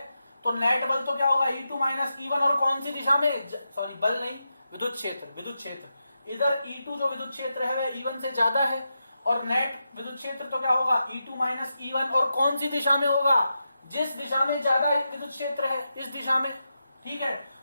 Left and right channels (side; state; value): both; inverted; correlation -0.88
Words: तो नेट बल तो क्या होगा, E2 माइनस E1, और कौन सी दिशा में, सॉरी बल नहीं, विद्युत क्षेत्र, विद्युत क्षेत्र। इधर E2 जो विद्युत क्षेत्र है वह E1 से ज्यादा है, और नेट विद्युत क्षेत्र तो क्या होगा, E2 माइनस E1, और कौन सी दिशा में होगा, जिस दिशा में ज्यादा विद्युत क्षेत्र है, इस दिशा में। ठीक है,